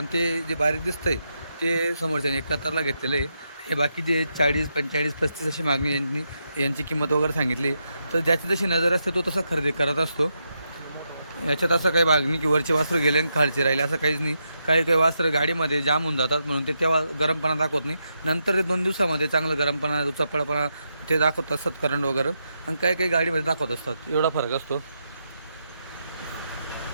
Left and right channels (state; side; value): inverted; both; correlation -0.83